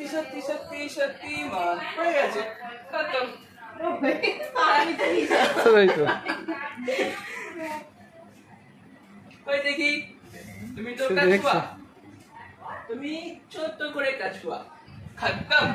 शक्ति शक्ति शक्तिमान हो গেছে খতম ওই দেখি তুমি তো কাছুয়া তুমি ছোট করে কাছুয়া खत्म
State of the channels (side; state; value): both; identical; correlation 1.00